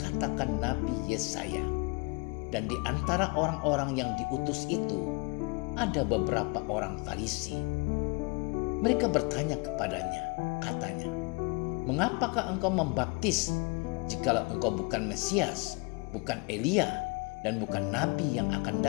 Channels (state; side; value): quieter; right; 30.2 dB